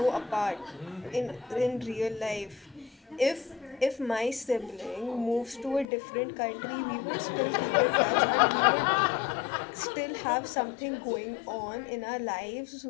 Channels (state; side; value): drops out; right; at 5.9 s